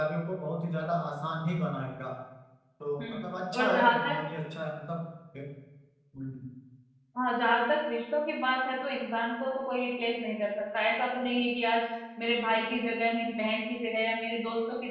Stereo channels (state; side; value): identical; both; correlation 1.00